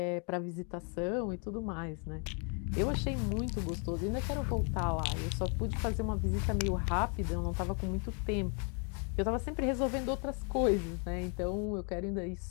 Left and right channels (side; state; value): right; quieter; 39.0 dB